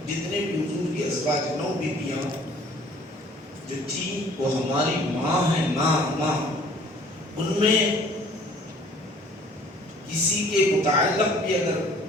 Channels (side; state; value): both; normal; correlation 0.54